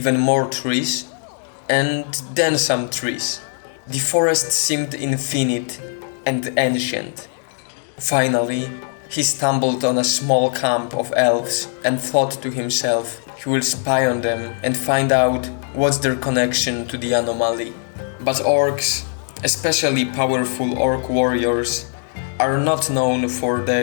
more trees, and then some trees. The forest seemed infinite and ancient. Finally, he stumbled on a small camp of elves and thought to himself he will spy on them and find out what's their connection to the anomaly. But orcs, especially powerful orc warriors, are not known for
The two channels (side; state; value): right; silent; 64 dB below the other